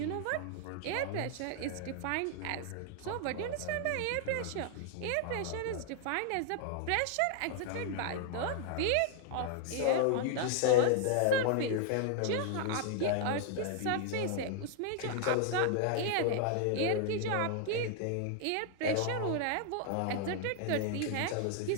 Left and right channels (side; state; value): both; different; correlation 0.00